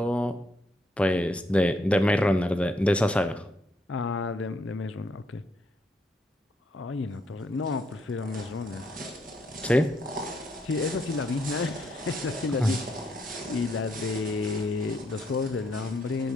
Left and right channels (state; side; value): normal; both; correlation 0.75